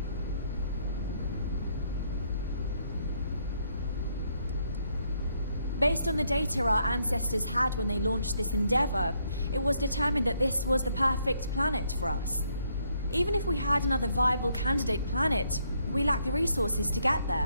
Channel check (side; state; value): both; inverted; correlation -0.72